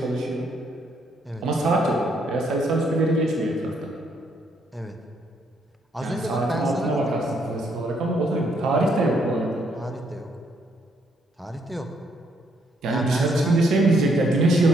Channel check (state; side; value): normal; both; correlation 0.72